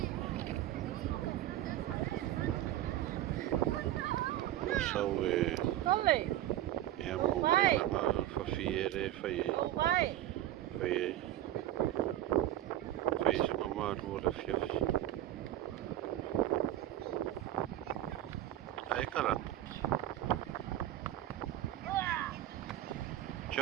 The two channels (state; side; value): quieter; left; 13.7 dB